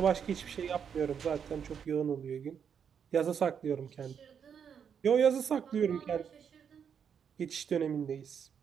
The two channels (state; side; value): quieter; left; 7.5 dB